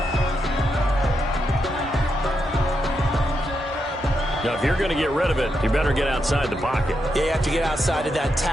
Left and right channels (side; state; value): both; normal; correlation 0.83